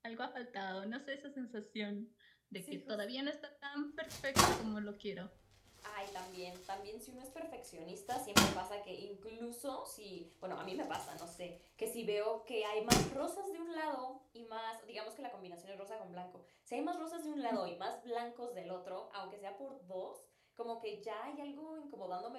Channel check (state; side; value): identical; both; correlation 1.00